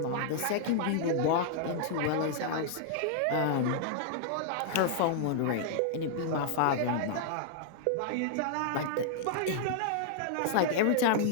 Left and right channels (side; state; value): both; different; correlation -0.01